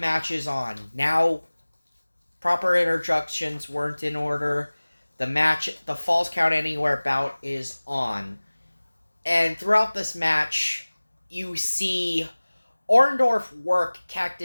is on. Now, proper introductions weren't in order. The Falls Count Anywhere bout is on. And throughout this match, you see Orndorff work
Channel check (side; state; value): both; inverted; correlation -1.00